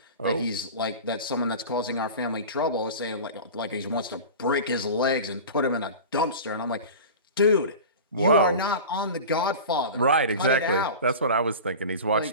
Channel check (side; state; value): both; inverted; correlation -0.33